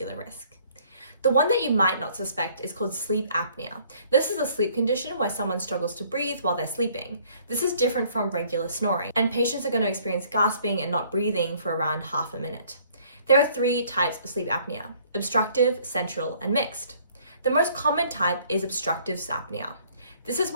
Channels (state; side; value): inverted; both; correlation -0.59